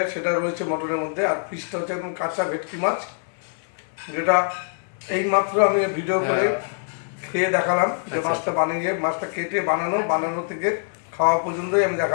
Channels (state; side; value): silent; right; 59 dB below the other